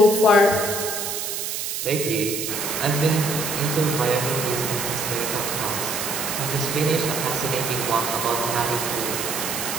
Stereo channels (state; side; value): noise; right; hiss, 3 dB below the sound